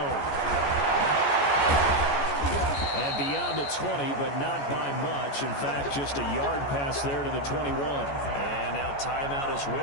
And beyond the 20, but not by much. In fact, just a yard pass there to the 21. And now timeout is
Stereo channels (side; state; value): right; late; 14 ms